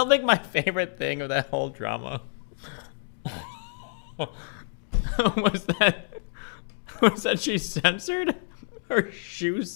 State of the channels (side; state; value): right; silent; digital silence